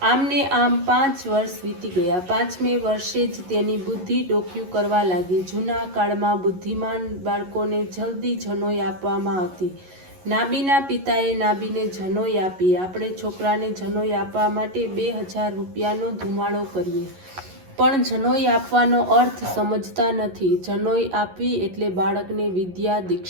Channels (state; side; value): late; left; 11 ms